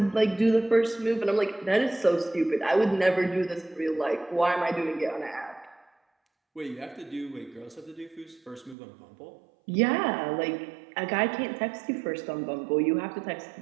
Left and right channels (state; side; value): drops out; left; at 8.8 s